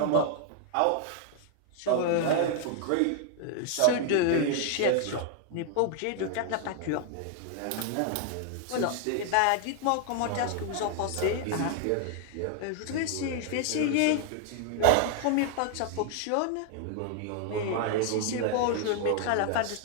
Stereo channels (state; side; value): different; both; correlation 0.00